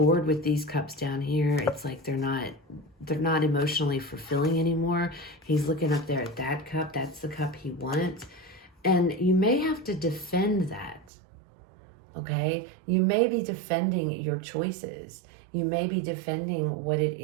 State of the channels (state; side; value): drops out; left; at 11.1 s